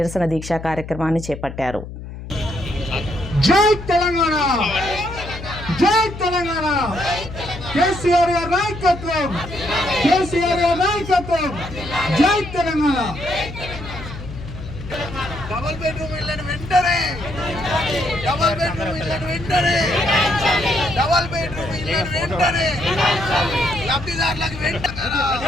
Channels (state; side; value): noise; left; hum, 11 dB below the sound